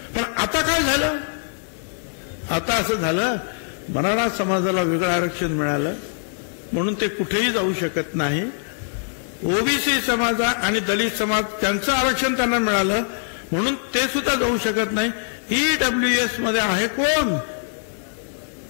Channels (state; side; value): silent; right; digital silence